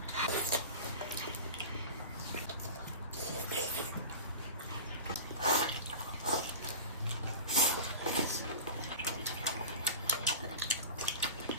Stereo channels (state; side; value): inverted; both; correlation -0.32